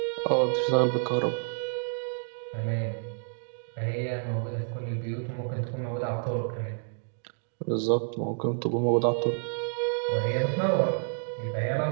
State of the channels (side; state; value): left; silent; digital silence